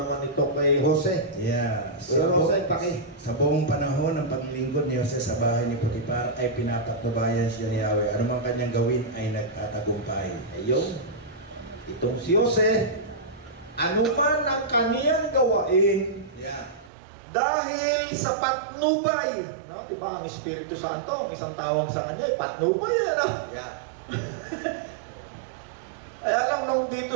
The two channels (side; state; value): left; drops out; at 16.9 s